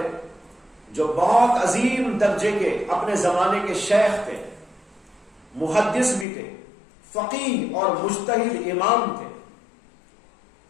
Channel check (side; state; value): right; drops out; at 6.2 s